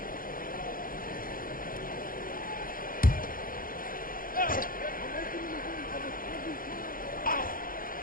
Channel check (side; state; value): right; late; 0.41 ms